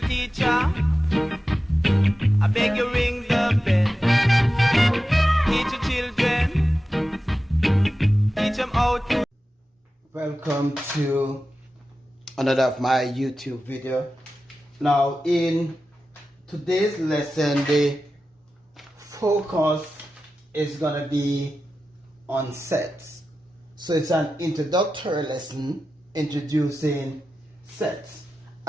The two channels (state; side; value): normal; both; correlation 0.93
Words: teacher, I beg you ring the bell. Teach your children, teach them how to. Welcome to another of my YouTube video. Now in today's lesson, the focus is gonna be on sets. So it's an introductory lesson introducing sets.